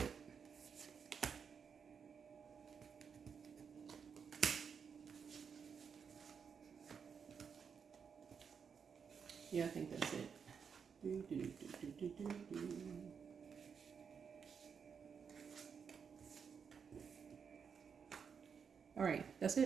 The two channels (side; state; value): left; quieter; 6.5 dB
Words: Yeah, I think that's it. All right, that's